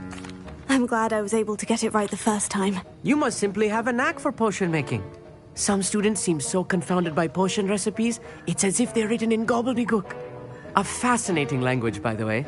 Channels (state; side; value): identical; both; correlation 1.00